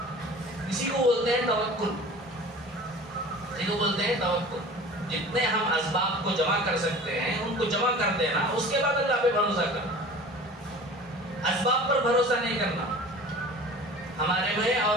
اسی کو بولتے ہیں توکل، اسی کو بولتے ہیں توکل۔ جتنے ہم اسباب کو جمع کر سکتے ہیں ان کو جمع کر دینا، اس کے بعد اللہ پہ بھروسہ کرنا، اسباب پر بھروسہ نہیں کرنا۔ ہمارے میں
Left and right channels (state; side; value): normal; both; correlation 0.41